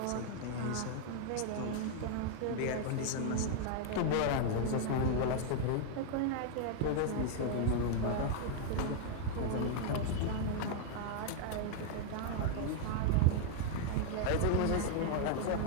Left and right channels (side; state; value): both; different; correlation 0.00